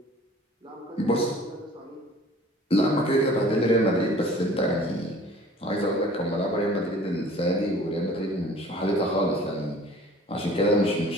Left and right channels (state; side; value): normal; both; correlation 0.48